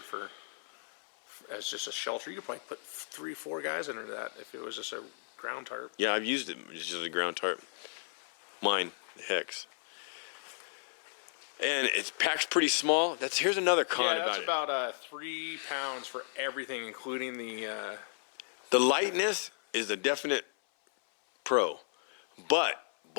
as just a shelter. You could probably put 3-4 guys under that if it was just a ground tarp. Yeah, I've used it just as a ground tarp. Mine, the hex. And it packs pretty small. Here's another con about it. Yeah, that's about 3 pounds for everything, including the... The lightness is a definite pro, but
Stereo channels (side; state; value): right; silent; 55 dB below the other